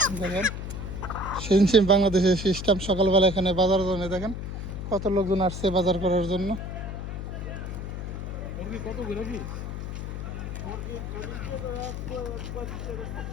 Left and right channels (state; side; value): noise; left; hum, 6 dB below the sound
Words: দেখেন সেম বাংলাদেশের সিস্টেম, সকালবেলা এখানে বাজার জন্য দেখেন কত লোকজন আসছে বাজার করার জন্য।